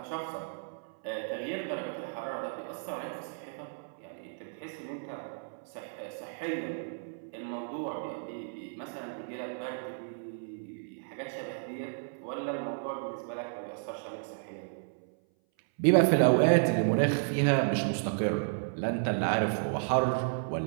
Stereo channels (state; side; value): silent; left; 56 dB below the other